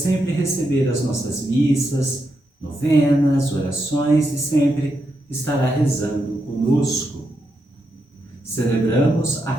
receber as nossas missas, novenas, orações e sempre estará rezando conosco. Celebramos a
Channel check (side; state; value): both; normal; correlation 0.83